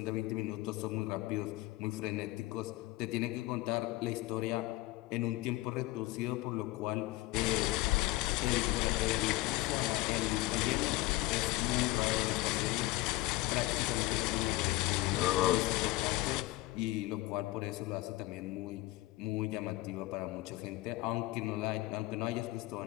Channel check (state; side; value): quieter; right; 18.9 dB